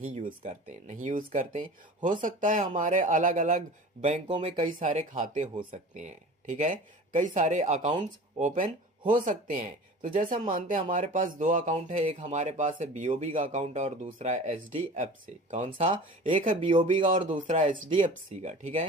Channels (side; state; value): both; normal; correlation 0.39